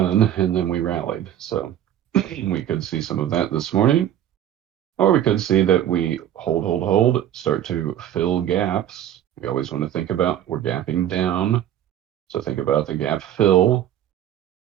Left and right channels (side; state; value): left; quieter; 11.0 dB